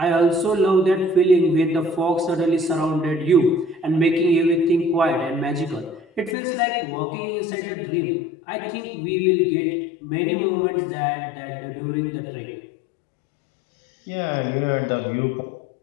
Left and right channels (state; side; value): drops out; right; at 6.4 s